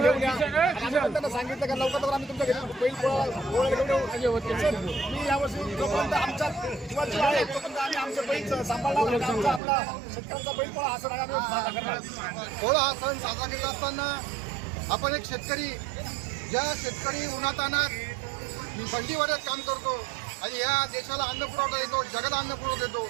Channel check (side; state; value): left; drops out; at 9.6 s